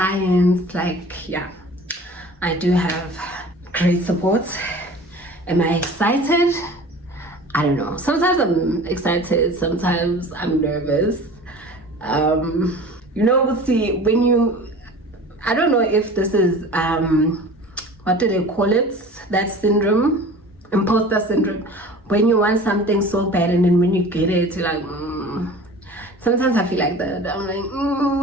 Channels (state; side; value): normal; both; correlation 0.41